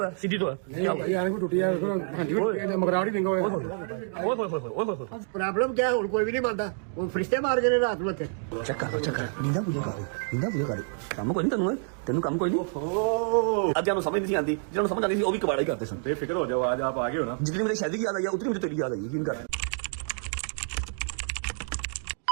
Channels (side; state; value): left; silent; 59 dB below the other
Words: है, सीधी तो है। प्रॉब्लम क्या है? कोई भी नहीं मानता, वो फरिश्ते मार के रात में चक्कर नींदा मुझे कर काम कोई नहीं तेन काम कोई नहीं। अब जानो समझ नहीं आती, जिन्होंने समझ आती थी वो भी कबाड़ा ही करते सन। बेफिक्र हो जाओ, आज आप आगे हो ना। जितनी मेरी शादी की याद आई है उतनी मुझे तेरी याद आई है। यकीन कर।